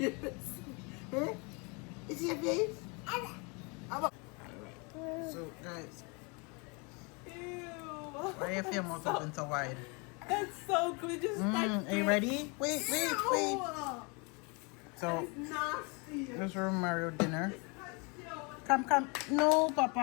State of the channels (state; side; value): quieter; right; 31.1 dB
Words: Huh? Is your face? So guys. Ew. Why you feel mouth open so wide? That's so good. Just Are you ready? Wait. No. So It's nasty. this is Mario dinner. Come. No,